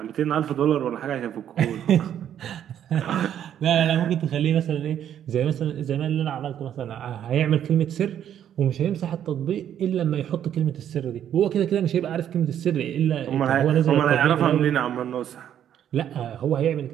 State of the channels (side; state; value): left; quieter; 10.1 dB